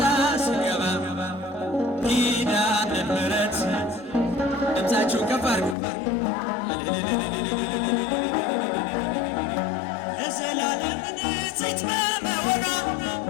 ስገባ ኪዳነ ምሕረት ድምፃችሁ ከፍ አድርጉ ለዘላለም ንጽሕት በመሆኗ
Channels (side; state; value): right; drops out; at 5.8 s